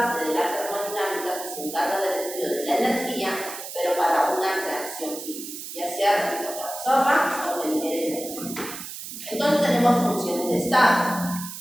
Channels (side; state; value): right; noise; hiss, 10 dB below the sound